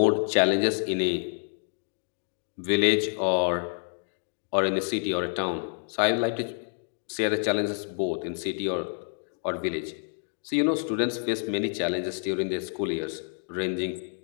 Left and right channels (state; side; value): silent; right; 59 dB below the other